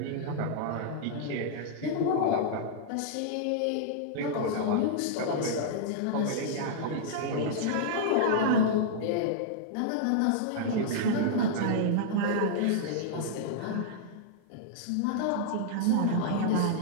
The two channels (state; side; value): different; both; correlation -0.02